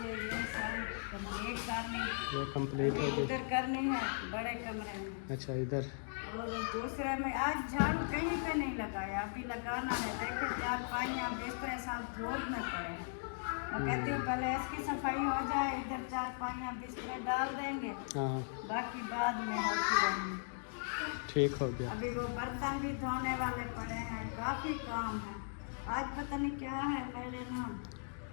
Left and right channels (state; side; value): silent; right; digital silence